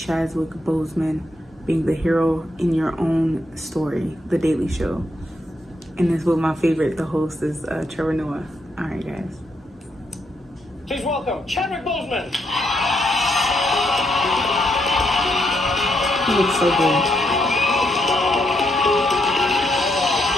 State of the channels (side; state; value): both; normal; correlation 0.78